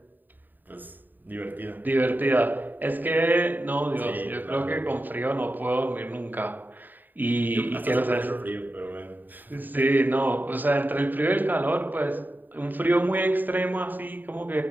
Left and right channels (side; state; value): left; late; 0.089 ms